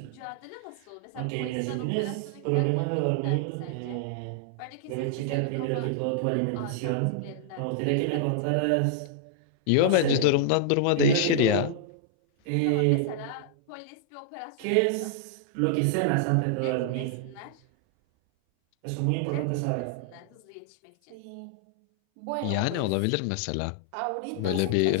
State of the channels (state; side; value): different; both; correlation -0.01